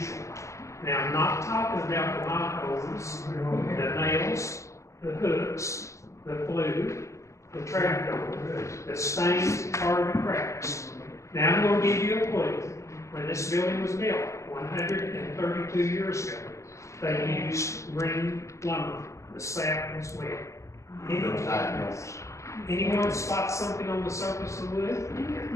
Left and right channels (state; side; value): late; right; 0.15 ms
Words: Now, I'm not talking about the knot holes, the nails, the hooks, the flue, the trapdoor, the stains, or the cracks. Now, I'm going to give you a clue. When this building was built 132 years ago, they used green lumber. The sap was wet. Anyone spot something on the surface of the wood?